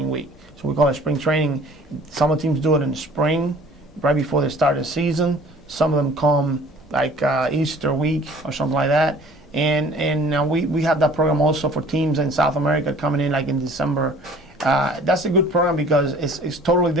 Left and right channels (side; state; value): both; normal; correlation 0.50